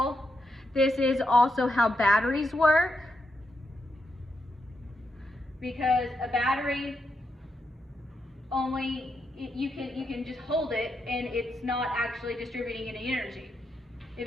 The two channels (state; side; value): normal; both; correlation 0.83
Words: this is also how batteries work. Because a battery only, you can just hold it and it's not actually distributing any energy.